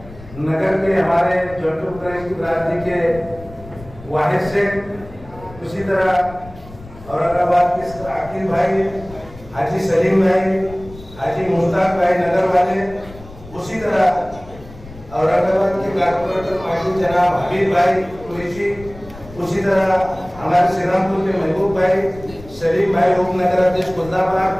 नगर के हमारे जंतु की बिरादरी के वाहिद से, उसी तरह औरंगाबाद के आकिब भाई, हाजी सलीम भाई, हाजी मुश्ताक भाई नगर वाले, उसी तरह औरंगाबाद के कारपोरेटर माजी जनाब हबीब भाई कुरैशी, उसी तरह हमारे श्रीरामपुर के महबूब भाई, सलीम भाई उपनगर अध्यक्ष खुलदाबाद,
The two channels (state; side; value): noise; left; rumble, 18 dB below the sound